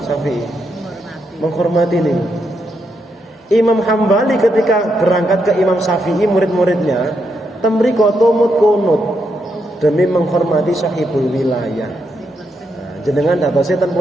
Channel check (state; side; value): normal; both; correlation 0.81